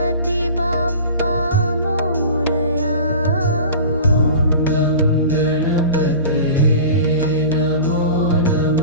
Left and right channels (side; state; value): both; inverted; correlation -0.37